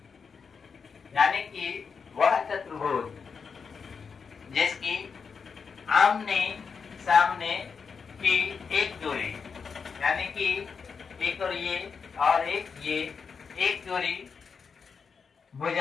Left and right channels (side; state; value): right; quieter; 5.7 dB